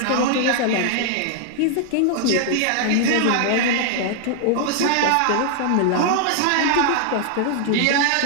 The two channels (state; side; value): different; both; correlation 0.00